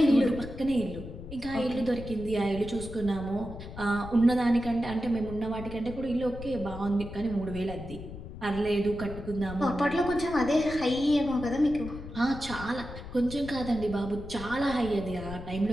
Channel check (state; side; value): noise; left; rumble, 12 dB below the sound